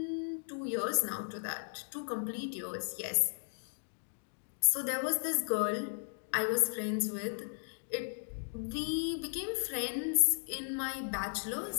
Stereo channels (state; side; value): silent; right; digital silence